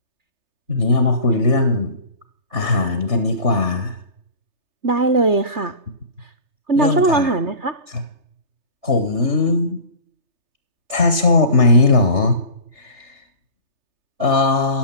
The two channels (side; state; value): left; late; 3.3 ms